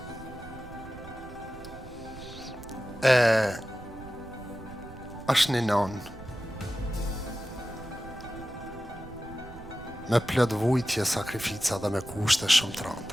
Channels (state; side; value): noise; right; rumble, 15 dB below the sound